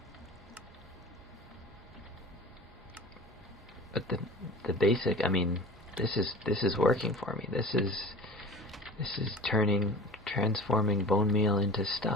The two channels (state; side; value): normal; both; correlation 0.37